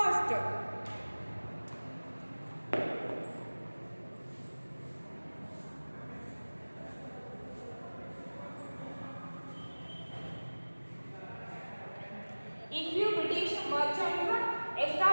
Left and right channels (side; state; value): both; inverted; correlation -1.00